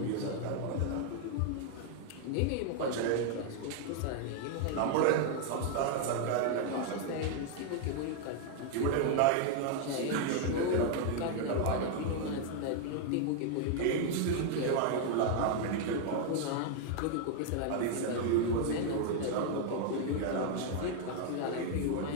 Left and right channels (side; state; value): both; different; correlation 0.00